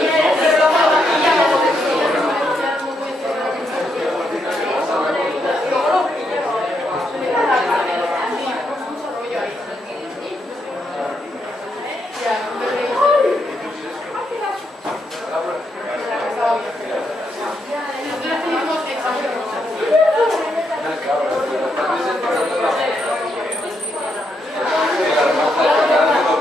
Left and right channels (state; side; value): normal; both; correlation 0.79